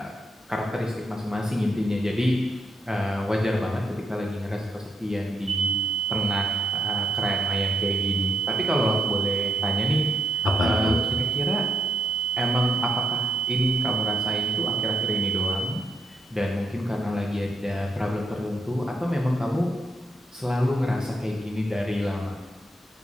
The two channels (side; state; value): both; normal; correlation 0.72